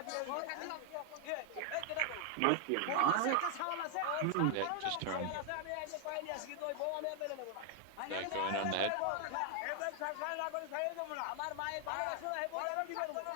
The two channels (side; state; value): both; different; correlation 0.00